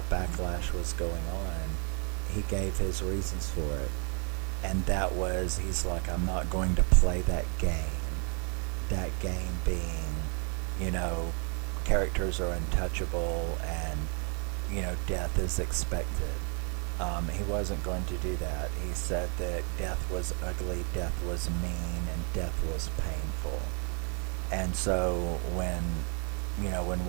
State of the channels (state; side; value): quieter; left; 38.5 dB